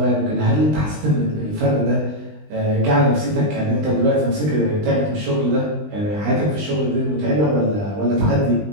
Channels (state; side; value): late; left; 20 ms